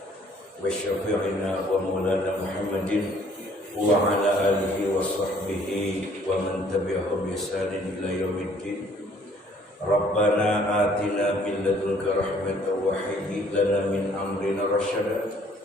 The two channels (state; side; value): normal; both; correlation 0.59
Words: wa syafi'ina wa maulana Muhammadin wa ala alihi wa sahbihi wa man tabi'ahum bi ihsanin ila yaumiddin. Rabbana atina min ladunka rahmatan wa hayyi lana min amrina rasyada.